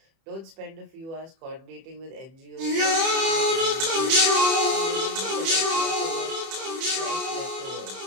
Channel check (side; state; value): left; late; 31 ms